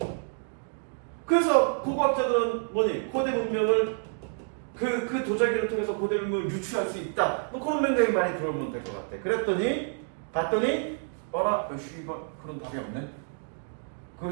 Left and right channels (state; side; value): silent; left; 59 dB below the other